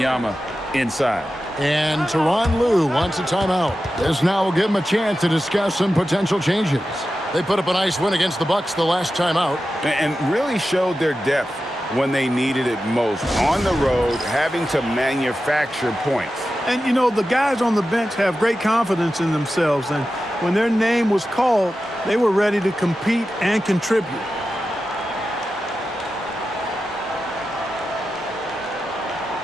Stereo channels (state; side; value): normal; both; correlation 0.92